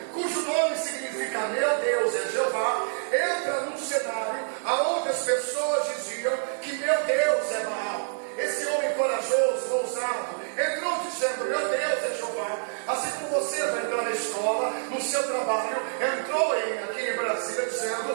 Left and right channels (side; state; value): left; silent; digital silence